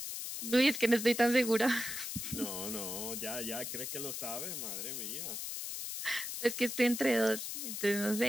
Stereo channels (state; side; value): noise; left; hiss, 5 dB below the sound